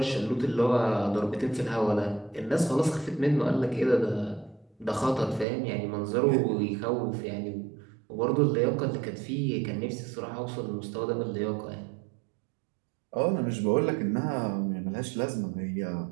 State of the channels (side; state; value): left; drops out; at 5.5 s